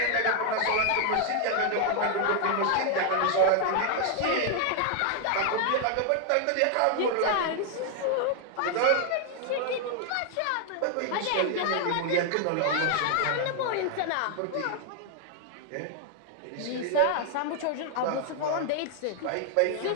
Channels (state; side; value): different; both; correlation 0.00